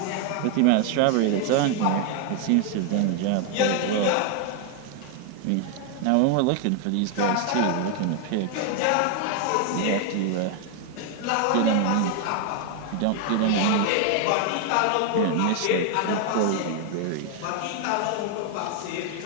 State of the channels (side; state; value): both; different; correlation 0.00